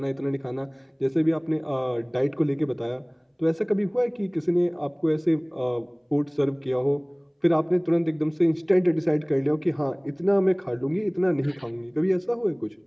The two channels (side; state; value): both; identical; correlation 1.00